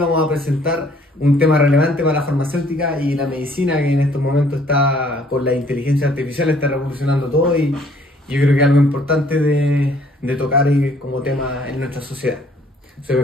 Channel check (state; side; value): normal; both; correlation 0.61